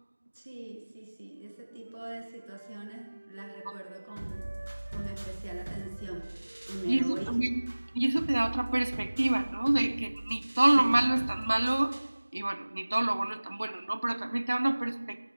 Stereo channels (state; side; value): inverted; both; correlation -1.00